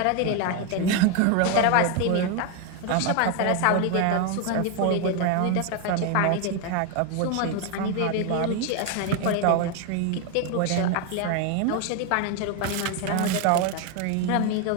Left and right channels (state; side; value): different; both; correlation 0.01